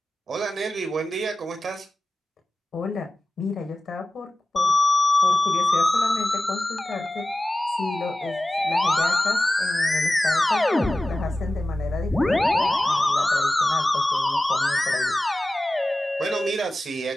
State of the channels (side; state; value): both; normal; correlation 0.95